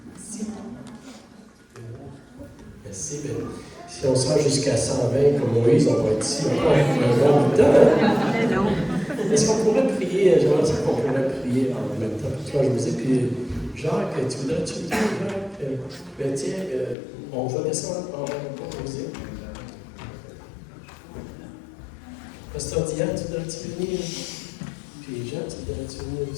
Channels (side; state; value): right; drops out; at 16.9 s